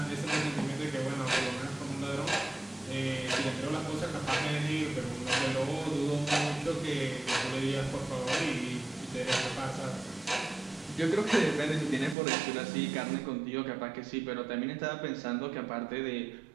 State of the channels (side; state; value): left; drops out; at 12.2 s